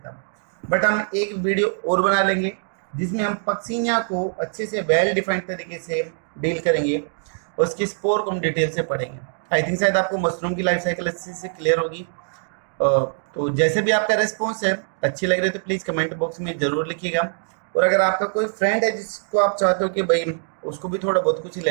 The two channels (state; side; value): silent; left; digital silence